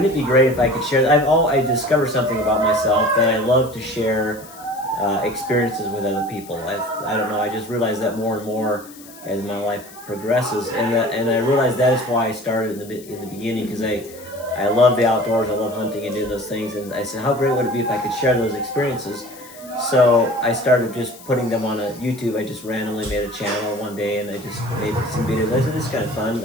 it be great if I could share? I discovered something about myself that I love to share experiences with other people. I don't know. I just realized that more and more as my life progresses, and I realized that is why I started in the beginning, because I love the outdoors. I love hunting and doing those things, and I said, how great would it be if I could share those experiences? So I started just putting them on a YouTube. I just randomly made a channel one day, and I just made some videos. I said, this is kind of fun.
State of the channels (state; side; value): noise; left; hiss, 20 dB below the sound